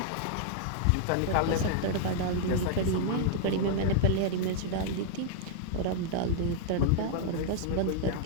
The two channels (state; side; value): different; both; correlation -0.01